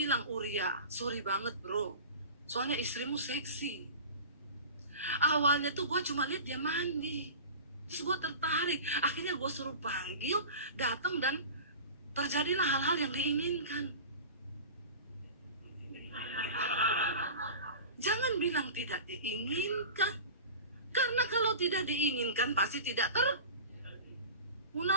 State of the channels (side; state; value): both; inverted; correlation -0.34